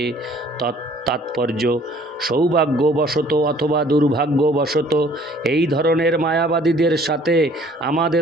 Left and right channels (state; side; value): normal; both; correlation 0.56